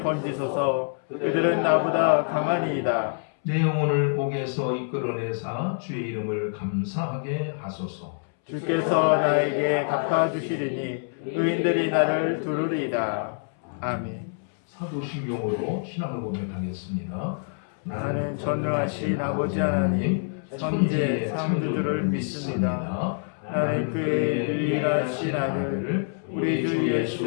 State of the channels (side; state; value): right; silent; 61 dB below the other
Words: 건지소서. 그들은 나보다 강하니이다. 내 영혼을 옥에서 이끌어내사 주의 이름을 감사하게 하소서. 주께서 나에게 갚아주시리니 의인들이 나를 두루리이다. 아멘. 사도신경으로 신앙을 고백하겠습니다. 나는 전능하신 아버지 하나님 천지의 창조주를 믿습니다. 나는 그의 유일하신 아들 우리 주 예수